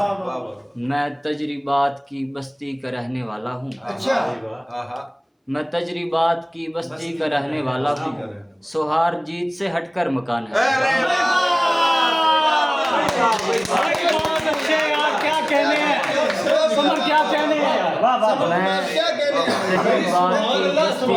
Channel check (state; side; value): identical; both; correlation 1.00